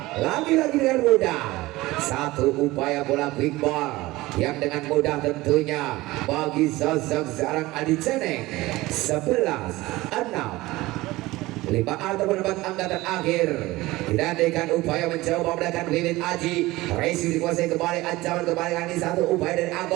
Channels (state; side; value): quieter; left; 19.2 dB